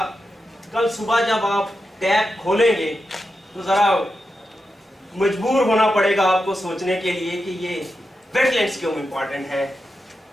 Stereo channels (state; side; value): normal; both; correlation 0.88